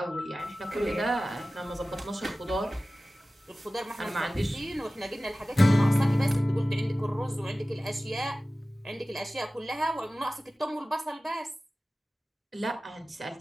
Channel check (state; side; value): normal; both; correlation 0.96